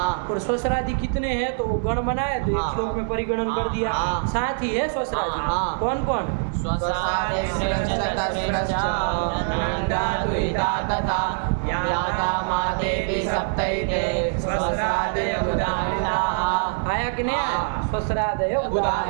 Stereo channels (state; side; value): silent; left; 62 dB below the other